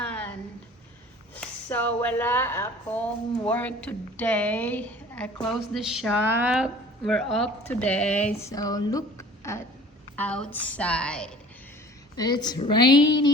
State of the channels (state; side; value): normal; both; correlation 0.46